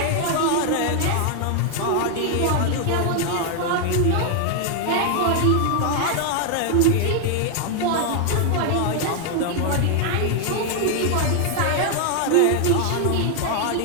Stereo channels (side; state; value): both; different; correlation 0.00